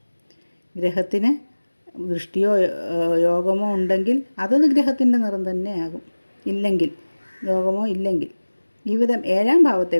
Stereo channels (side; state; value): both; inverted; correlation -1.00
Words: ഗ്രഹത്തിന് ദൃഷ്ടിയോ യോഗമോ ഉണ്ടെങ്കിൽ അതത് ഗ്രഹത്തിൻ്റെ നിറം തന്നെയാകും. യോഗമോ ഇല്ലെങ്കിൽ ഈ വിധം ഏഴാം ഭാവത്തെ